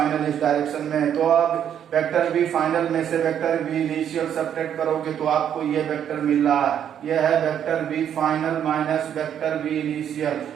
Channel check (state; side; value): quieter; left; 9.4 dB